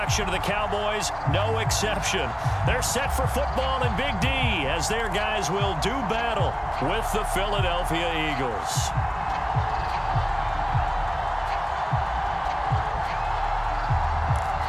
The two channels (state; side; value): identical; both; correlation 1.00